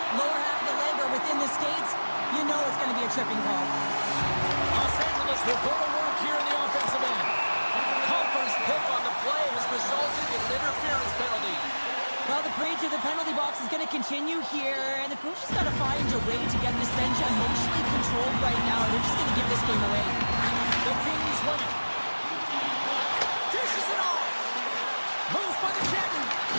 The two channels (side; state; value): both; inverted; correlation -1.00